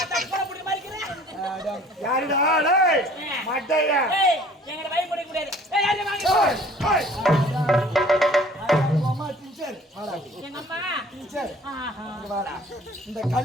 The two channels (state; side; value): normal; both; correlation 0.52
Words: கோய் புட்ட மாதிரி இருக்கற. யாருடா? டேய், மண்டையா? ஏய் எங்க பயப்பட கூடாது. ஏய் யாரே வாங்க. ஏய், ஏய். அம்மா டீச்சர் வாடா. எங்க அம்மா டீச்சர் ஆஹா. இங்க வாடா. இந்த